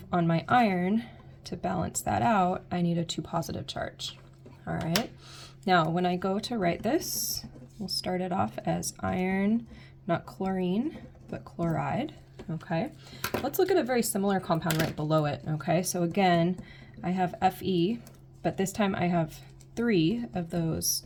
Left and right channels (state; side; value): identical; both; correlation 1.00